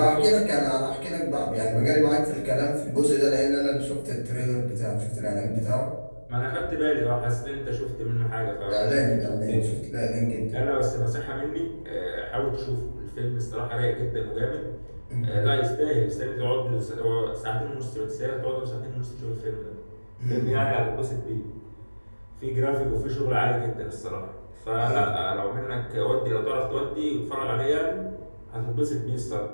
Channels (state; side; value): inverted; both; correlation -1.00